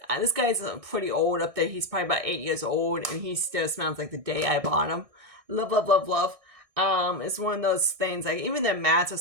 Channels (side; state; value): left; late; 1.6 ms